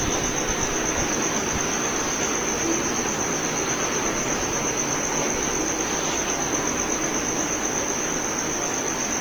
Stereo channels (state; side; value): noise; right; hiss, 17 dB below the sound